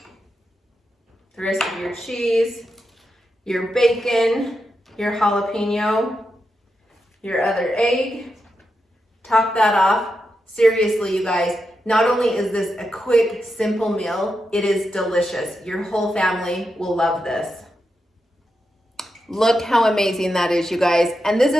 rest of your cheese, your bacon, your jalapeno, your other egg, top that off. Seriously, you guys, not only is this a quick, simple meal, it is delicious. Your whole family will love this. Look how amazing that is, you guys. And this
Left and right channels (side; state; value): both; normal; correlation 0.87